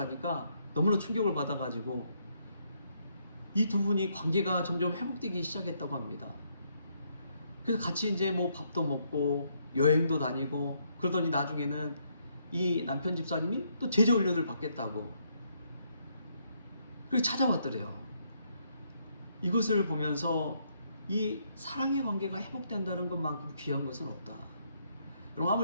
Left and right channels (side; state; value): both; inverted; correlation -0.73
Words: 너무나 충격을 받아가지고 이 두 분이 관계가 점점 회복되기 시작했다고 합니다. 그래서 같이 이제 뭐 밥도 먹고 여행도 다니고 그러더니 나중에는 이 남편 집사님이 또 제자훈련을 받겠다고 그렇게 찾아왔더래요. 이것을 보면서 이 사랑의 관계가 회복된다는 것만큼 귀한 것은 없다. 여러분,